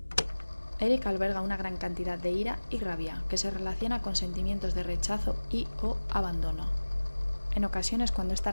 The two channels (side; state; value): both; inverted; correlation -1.00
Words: Eric alberga una gran cantidad de ira y rabia que se relaciona con sentimientos de rechazo y o abandono. En ocasiones, cuando esta